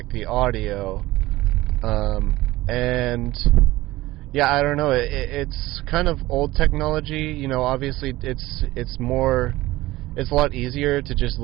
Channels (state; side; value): quieter; left; 17.9 dB